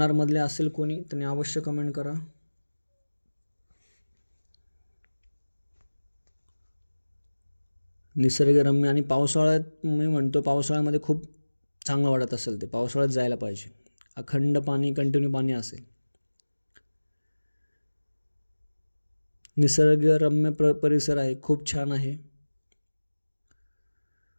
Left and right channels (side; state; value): both; inverted; correlation -1.00